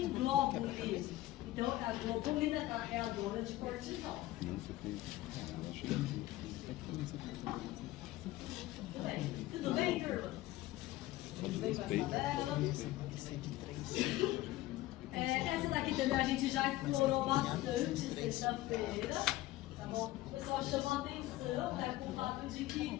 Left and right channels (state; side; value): quieter; right; 16.6 dB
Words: globulin. Então é a globulina carreadora de cortisol. Tudo bem? Tudo bem, turma? Tudo bem com essa tabela? Essa daqui também a gente já explorou bastante sexta-feira, tá bom? O pessoal chamou a atenção, né, com o fato de que